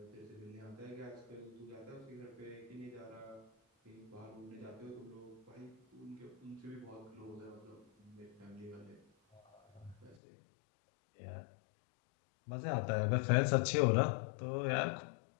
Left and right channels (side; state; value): right; drops out; at 10.2 s